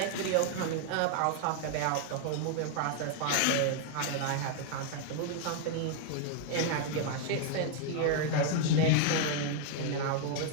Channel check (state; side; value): different; both; correlation 0.00